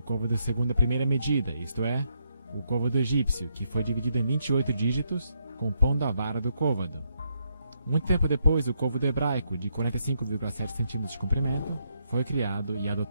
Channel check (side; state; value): both; inverted; correlation -0.77